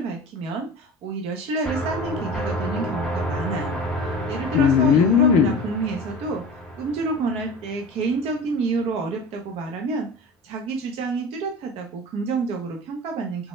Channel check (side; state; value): both; normal; correlation 0.36